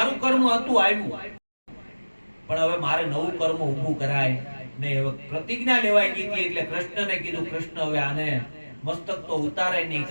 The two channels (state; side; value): inverted; both; correlation -1.00